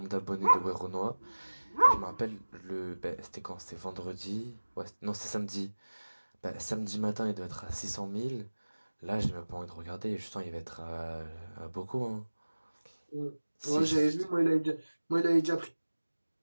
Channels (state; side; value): inverted; both; correlation -1.00